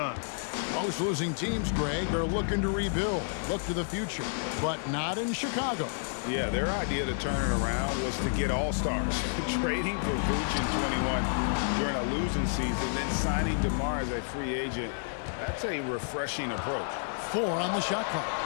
Most losing teams, Greg, are looking to rebuild, look to the future, but not in Chicago. Yeah, their idea to turn it around was to get all-stars. Trading for Vooch in 21 during a losing season, then signing DeMar as a free agent. That's a refreshing approach. 4 on the shot clock.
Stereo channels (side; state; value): right; silent; digital silence